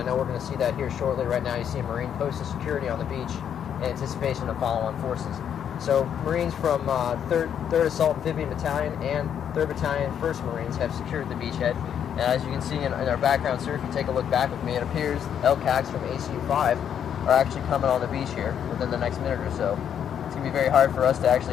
know we're going to see that here shortly. Right now you see a Marine posted security on the beach in anticipation of follow-on forces. So Marines from 3rd Assault Amphibian Battalion and 3rd Battalion 1st Marines have secured the beachhead. And as you can see in our background, sir, if you take a look back with me, it appears LCACs from ACU-5 are actually coming on the beach here within the next minute or so. It's going to be very hard for us to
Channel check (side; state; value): right; quieter; 8.8 dB